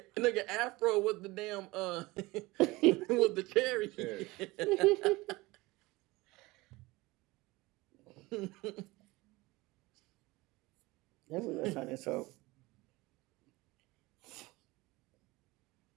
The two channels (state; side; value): quieter; left; 21.3 dB